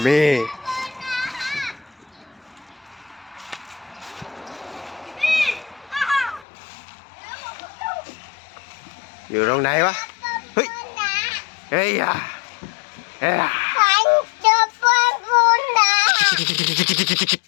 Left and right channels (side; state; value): right; drops out; at 6.5 s